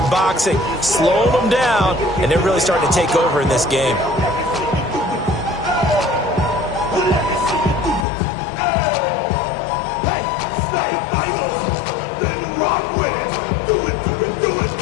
boxing, slowing them down, and they're really starting to take over in this game.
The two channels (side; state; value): right; drops out; at 8.1 s